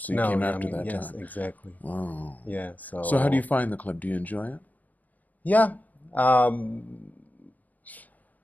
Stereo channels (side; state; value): right; late; 0.079 ms